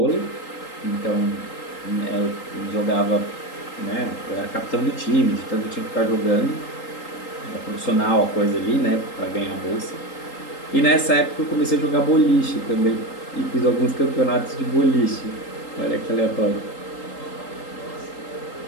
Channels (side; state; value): right; late; 3.8 ms